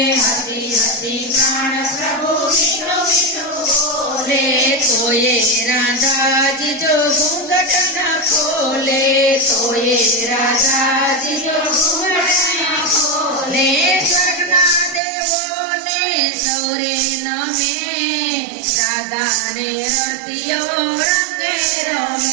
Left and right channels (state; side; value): drops out; left; at 15.0 s